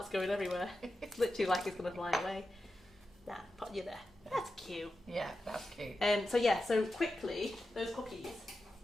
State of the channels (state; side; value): normal; both; correlation 0.91